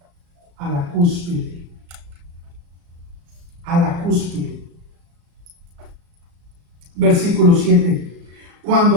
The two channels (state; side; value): late; left; 35 ms